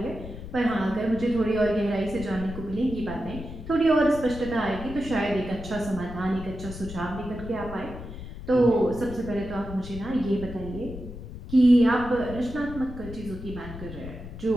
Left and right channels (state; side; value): noise; left; rumble, 11 dB below the sound